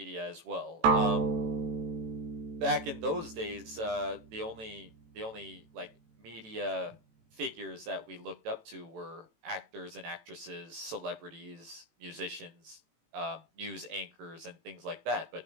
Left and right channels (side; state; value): left; late; 18 ms